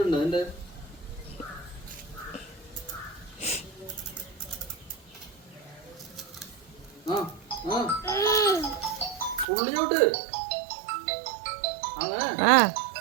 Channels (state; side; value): drops out; left; at 9.5 s